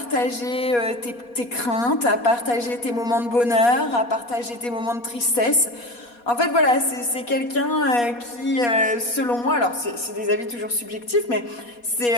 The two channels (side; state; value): right; late; 4.2 ms